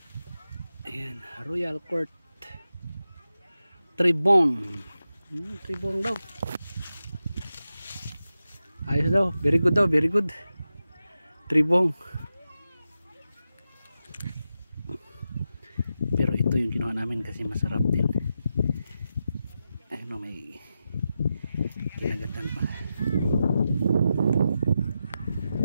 Ayan, Royal Court. Tribong. Tribong daw. Ayos daw, very good daw, very good. Tribong. Pero ito yung ginawa namin kasi masarap din. Ano, may kinagatan pa.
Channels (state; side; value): inverted; both; correlation -0.90